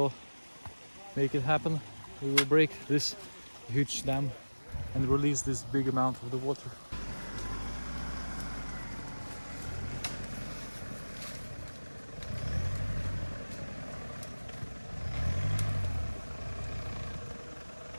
make it happen. We will break this huge dam and release this big amount of the water.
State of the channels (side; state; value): both; inverted; correlation -1.00